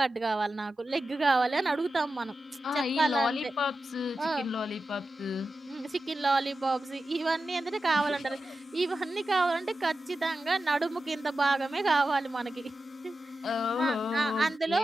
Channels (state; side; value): normal; both; correlation 0.92